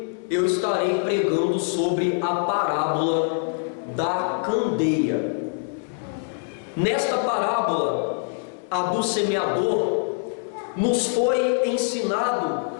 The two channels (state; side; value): silent; right; 62 dB below the other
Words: eu estarei pregando sobre a parábola da candeia. Nesta parábola, a do semeador, nos foi ensinado